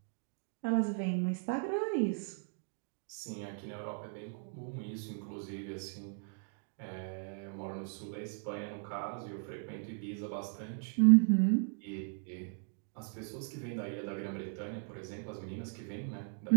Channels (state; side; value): silent; left; 53 dB below the other